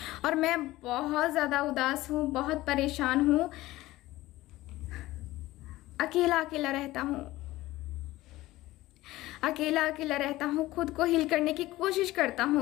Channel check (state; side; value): quieter; right; 17.4 dB